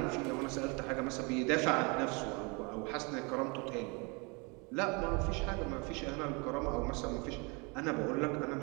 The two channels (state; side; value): quieter; left; 30.5 dB